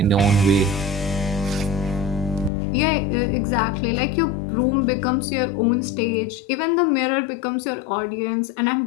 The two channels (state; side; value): drops out; right; at 2.5 s